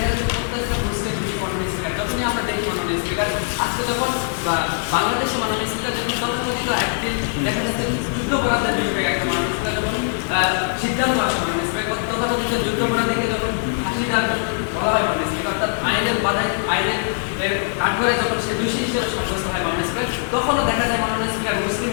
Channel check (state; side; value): silent; right; 65 dB below the other